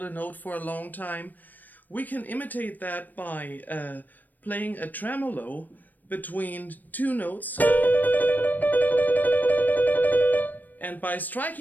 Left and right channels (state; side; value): late; right; 0.086 ms